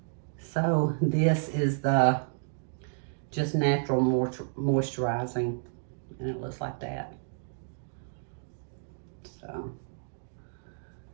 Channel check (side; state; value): left; silent; digital silence